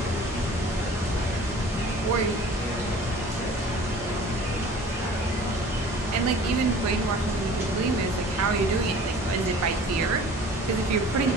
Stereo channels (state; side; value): normal; both; correlation 0.46